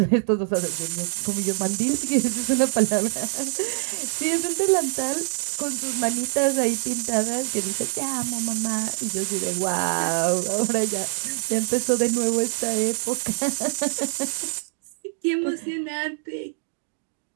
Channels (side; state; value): left; silent; digital silence